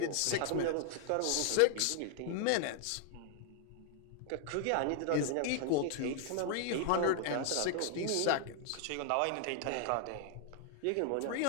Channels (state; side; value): different; both; correlation 0.00